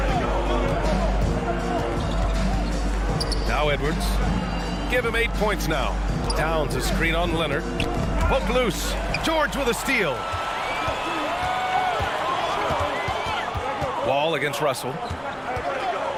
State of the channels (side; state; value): both; identical; correlation 1.00